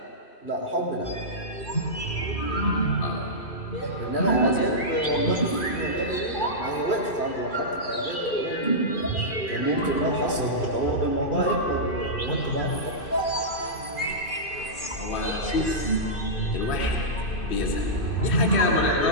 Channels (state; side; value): late; right; 2.5 ms